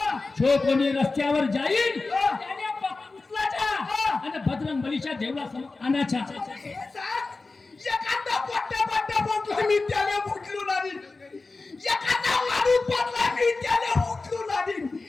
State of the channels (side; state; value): right; quieter; 3.7 dB